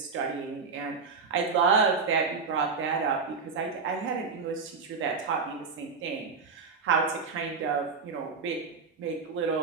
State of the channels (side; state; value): left; quieter; 5.0 dB